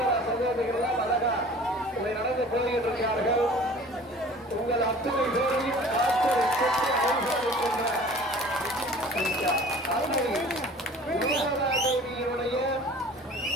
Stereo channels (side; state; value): both; normal; correlation 0.46